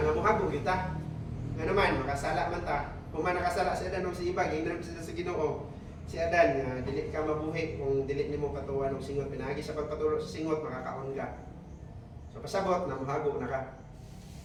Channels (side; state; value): both; identical; correlation 1.00